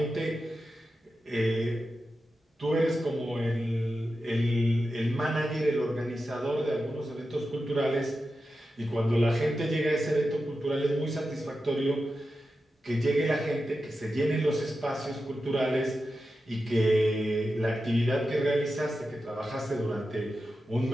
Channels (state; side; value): normal; both; correlation 0.91